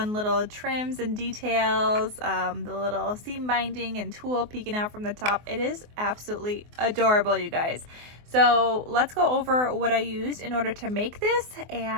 little trims and details, the little seam binding and tulle peeking out from the top. It is absolutely adorable, you guys. So let's go over what I used in order to make this,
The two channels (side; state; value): left; late; 24 ms